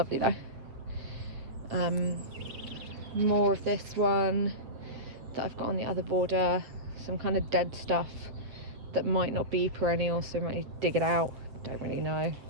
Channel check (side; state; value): left; late; 8.0 ms